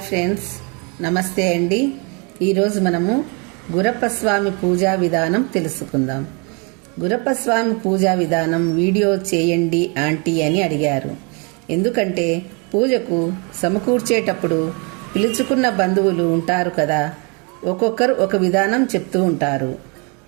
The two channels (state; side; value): quieter; left; 32.8 dB